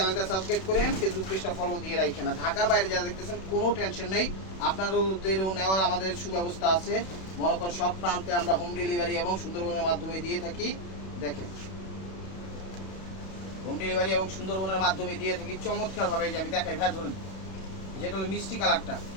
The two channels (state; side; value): late; right; 32 ms